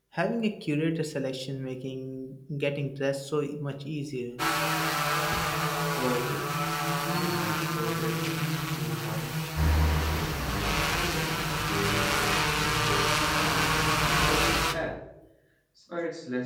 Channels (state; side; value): identical; both; correlation 1.00